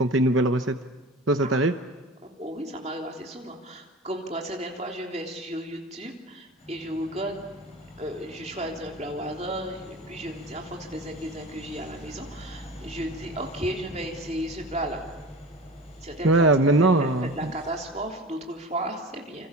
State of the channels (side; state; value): both; normal; correlation 0.35